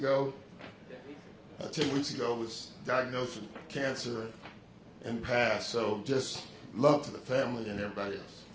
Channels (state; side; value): identical; both; correlation 1.00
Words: 10 weeks ago was diagnosed with cancer and passed. So just love to the family and everybody else.